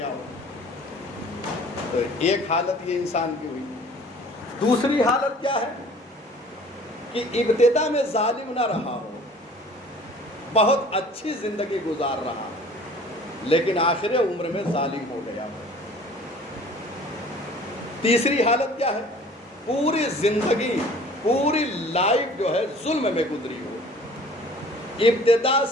ہو. تو ایک حالت یہ انسان کی ہوئی. دوسری حالت کیا ہے کہ ابتدا میں ظالم نہ رہا ہو، بہت اچھی زندگی گزار رہا لیکن آخر عمر میں ظالم ہو گیا ہو. تیسری حالت کیا ہے؟ پوری زندگی، پوری لائف جو ہے ظلم میں گزری ہو، ابتدا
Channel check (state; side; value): normal; both; correlation 0.49